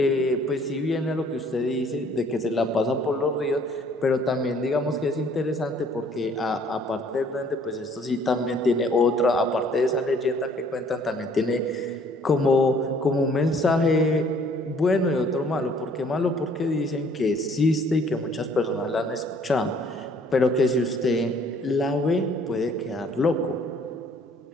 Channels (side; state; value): both; normal; correlation 0.59